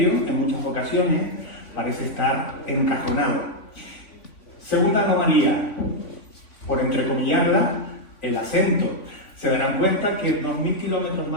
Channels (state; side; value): late; right; 3.5 ms